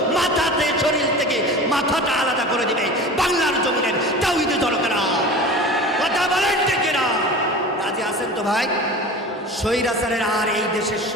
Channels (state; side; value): normal; both; correlation 0.35